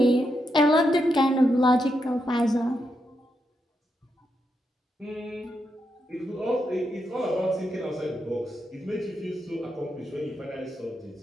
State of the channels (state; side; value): normal; both; correlation 0.83